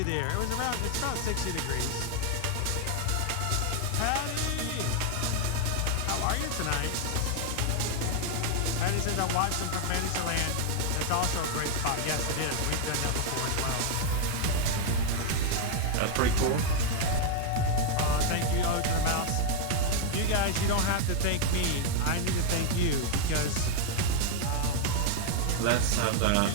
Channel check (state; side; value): different; both; correlation 0.00